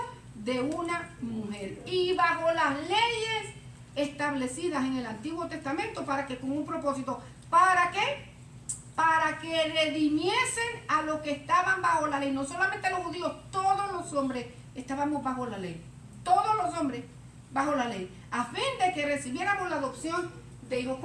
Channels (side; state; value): both; identical; correlation 1.00